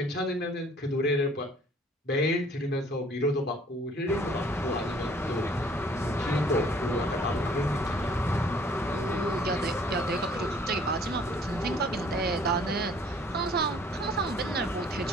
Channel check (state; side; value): normal; both; correlation 0.57